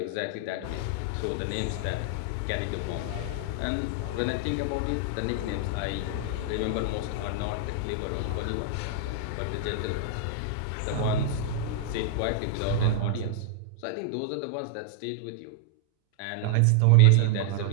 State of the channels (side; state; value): both; different; correlation 0.00